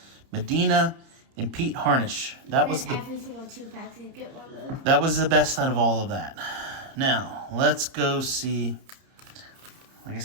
Medina and Pete Harnish. That was the every single 2 packs you get one of those. That was the best out of all of that. Now, let's go see. Like I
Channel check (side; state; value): left; late; 30 ms